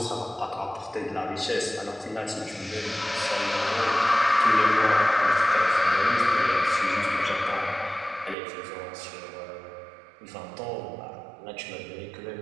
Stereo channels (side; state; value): left; drops out; at 8.3 s